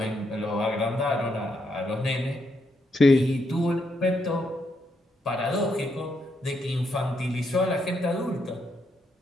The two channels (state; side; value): normal; both; correlation 0.78